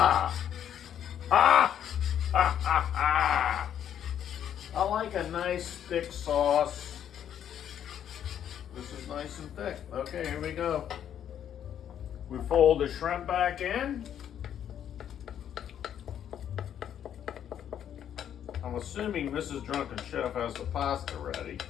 Ah! Ha, ha, ha. I like a nice thick sauce. This is nice and thick. Okay, here we go. We fold the shrimp back in. I'm assuming Mrs. Drunken Chef has the pasta ready.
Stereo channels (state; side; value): quieter; right; 9.7 dB